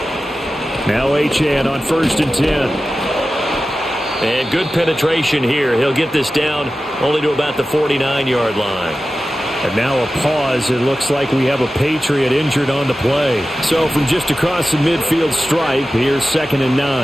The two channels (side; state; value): both; normal; correlation 0.94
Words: Now Achane on 1st and 10. And good penetration here. He'll get this down only to about the 49-yard line. And now a pause. It looks like we have a Patriot injured on the play. So from just across the midfield stripe, here's 2nd and